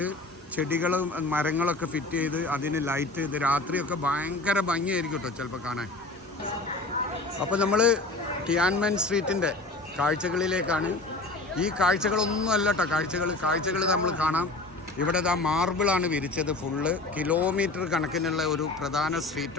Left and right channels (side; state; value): right; quieter; 3.0 dB